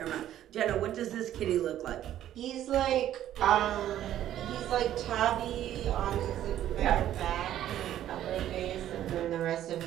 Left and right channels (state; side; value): quieter; left; 12.0 dB